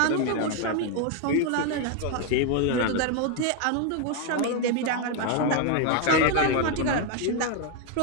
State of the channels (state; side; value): different; both; correlation 0.01